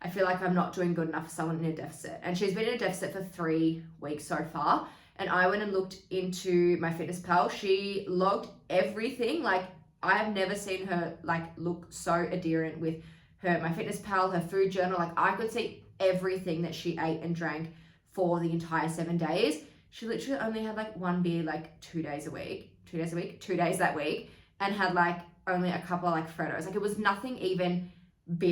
I feel like I'm not doing good enough for someone in a deficit. And she's been in a deficit for 3 weeks so far. And I went and looked into my Fitness Pal. She logged everything. Like I have never seen her like look so adherent with my Fitness Pal, her food journal. Like I could see everything that she ate and drank for the entire 7 days. She literally only had like 1 beer like 2 days that week, and had like only a couple of like Freddos. Like it was nothing even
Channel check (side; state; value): both; identical; correlation 1.00